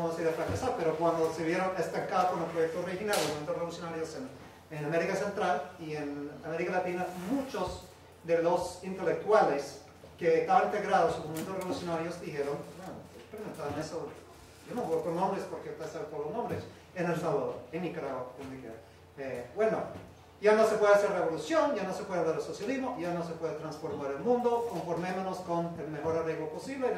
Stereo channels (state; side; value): identical; both; correlation 1.00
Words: a decir a fracasar, pero cuando se vieron estancados con el proyecto original, los movimientos revolucionarios en América Central y en América Latina, muchos de los intelectuales que estaban integrados en los movimientos revolucionarios dijeron, bueno, experimentaban eso, yo no voy por nombres porque pasan por los nombres, en El Salvador, en Nicaragua, bueno, ya no se puede hacer revolución, ya no se puede hablar de socialismo, ya no se puede transformar el mundo, conformémonos con el mejor arreglo posible